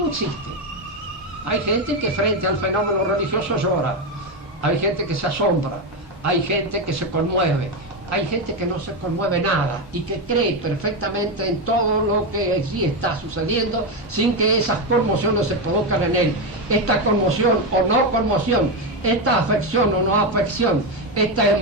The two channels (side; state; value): both; normal; correlation 0.10